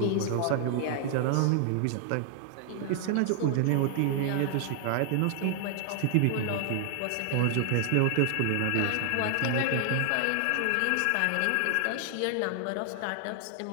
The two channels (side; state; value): both; different; correlation 0.00